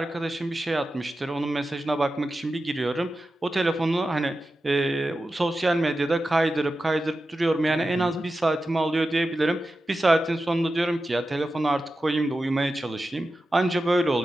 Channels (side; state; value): both; normal; correlation 0.92